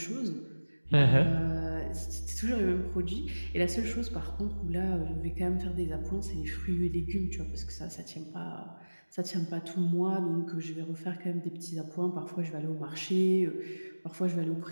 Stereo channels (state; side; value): inverted; both; correlation -1.00